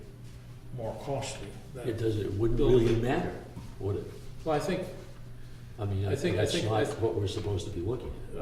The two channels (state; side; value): identical; both; correlation 1.00